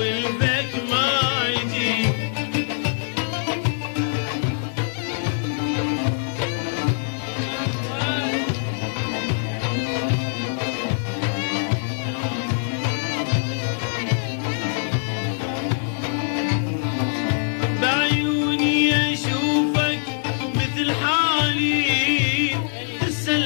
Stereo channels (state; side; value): silent; right; digital silence